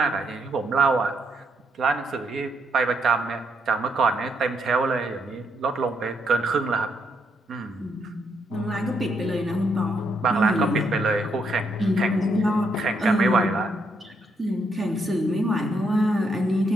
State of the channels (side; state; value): both; normal; correlation 0.76